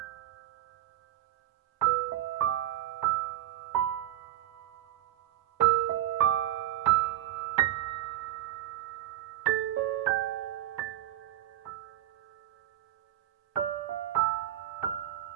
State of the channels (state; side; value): quieter; left; 13.3 dB